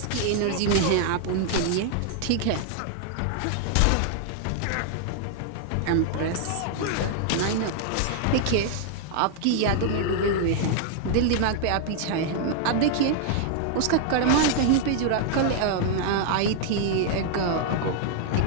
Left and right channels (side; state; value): both; different; correlation 0.00